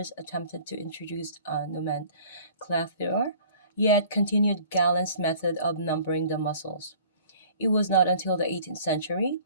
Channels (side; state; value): both; inverted; correlation -0.50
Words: attempted to introduce nomenclature, yet continued Galen's method of numbering the muscles. It was not until the 18th century,